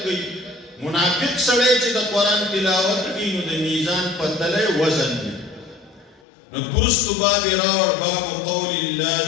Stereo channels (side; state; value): right; drops out; at 6.2 s